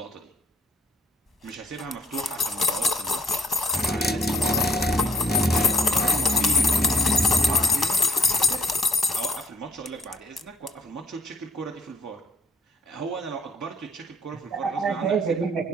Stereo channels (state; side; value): normal; both; correlation 0.59